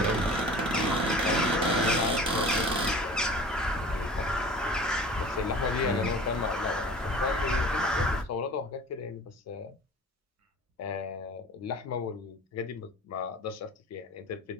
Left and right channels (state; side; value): normal; both; correlation 0.42